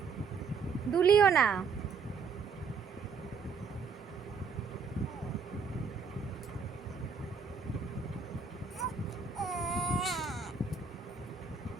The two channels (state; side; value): quieter; left; 5.5 dB